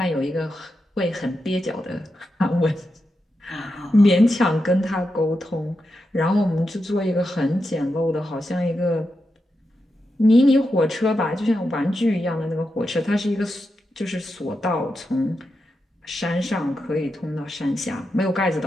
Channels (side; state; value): both; normal; correlation 0.87